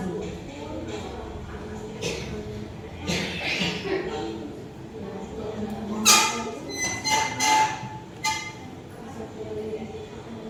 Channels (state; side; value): identical; both; correlation 1.00